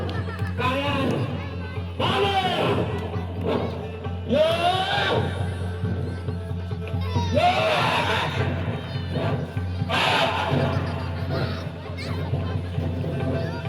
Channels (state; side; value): identical; both; correlation 1.00